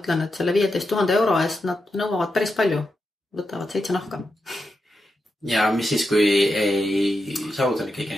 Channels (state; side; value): normal; both; correlation 0.87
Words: et selle 15 000 euro eest nad nõuavad päris palju, võtavad 7 nahka. Ja mis siis, kui ei saavuta kõiki